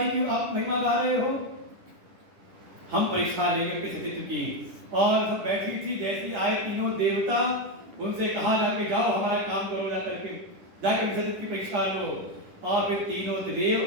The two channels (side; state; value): left; late; 10 ms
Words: की आप महिमा गा रहे हो। हम परीक्षा लेकर के सतीत्व की, और सब बैठी थी, जैसी आए तीनों देवता, उनसे कहा जाके जाओ हमारा काम करो, जा करके जाकर सतीत्व की परीक्षा लो। और फिर तीनों